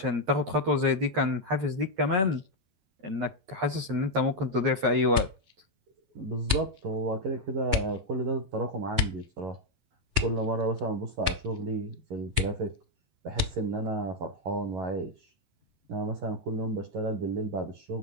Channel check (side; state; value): left; late; 10 ms